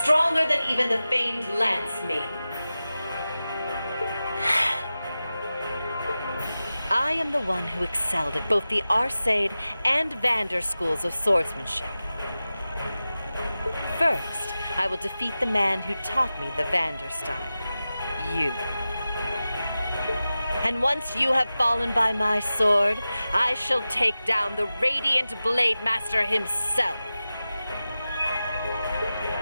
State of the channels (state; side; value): inverted; both; correlation -0.94